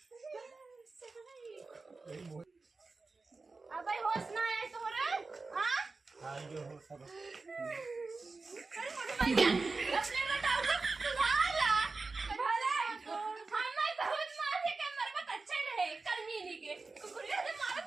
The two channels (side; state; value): left; quieter; 3.9 dB